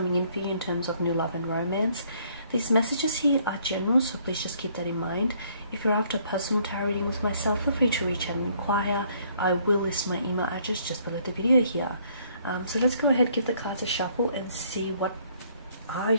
in for you in terms of new love and romance. These messages here are general, so please just keep that in mind. If you're after a personal tarot reading with myself, feel free to reach out and inquire. I will list my email address just below the video here. So let's go ahead, give the cards a shuffle and see what are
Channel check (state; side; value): inverted; both; correlation -0.64